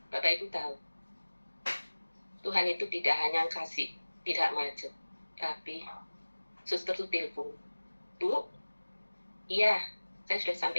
Bapak Ibu tahu, Tuhan itu tidak hanya kasih tidak macet, tapi suster itu telepon, Bu, iya, saya sudah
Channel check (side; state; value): both; inverted; correlation -1.00